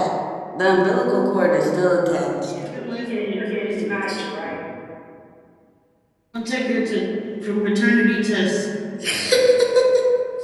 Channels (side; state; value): both; identical; correlation 1.00